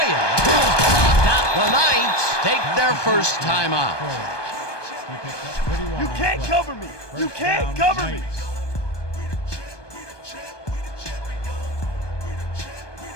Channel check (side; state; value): right; late; 1.2 ms